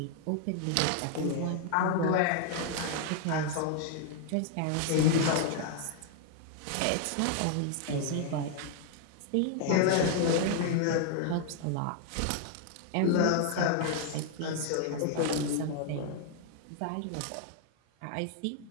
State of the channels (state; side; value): different; both; correlation 0.00